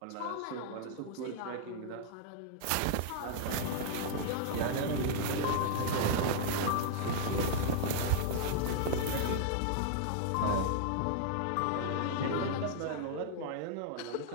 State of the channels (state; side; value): different; both; correlation -0.01